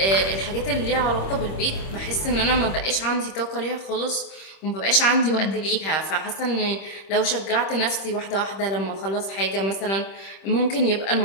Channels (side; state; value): right; late; 26 ms